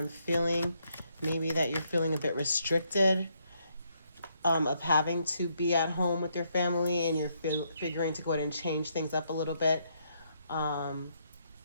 feeling. Maybe that you're feeling a bit restricted of having to be at home with your family, and you're figuring to go ahead and change things up a little bit. Out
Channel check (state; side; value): inverted; both; correlation -0.75